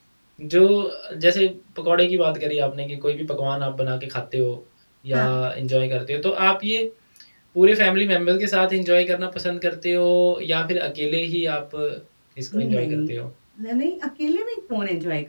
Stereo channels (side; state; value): both; inverted; correlation -1.00